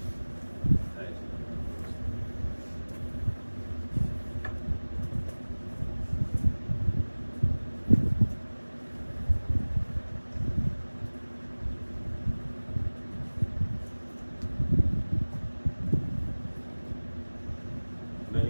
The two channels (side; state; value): both; inverted; correlation -1.00